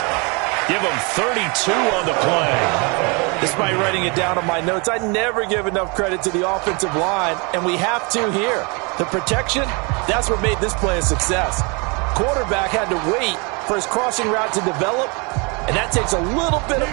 Give him 32 on the play. Despite writing it down on my notes, I never give enough credit to the offensive line, and we have to here. The protection, that's what made this play a success. Quarterback had to wait for his crossing route to develop, and that takes a little bit of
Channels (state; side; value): quieter; left; 30.9 dB